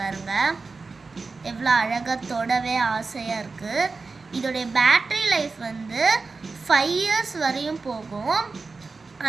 பாருங்கள். எவ்வளோ அழகாக தொடவே ஆசையாக இருக்குது. இதோடைய பேட்ரி லைஃப் வந்து 5 years வரையும் போகும்.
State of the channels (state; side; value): quieter; left; 4.1 dB